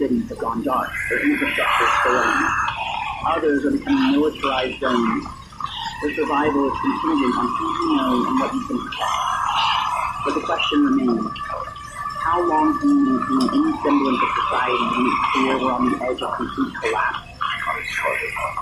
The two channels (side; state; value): both; identical; correlation 1.00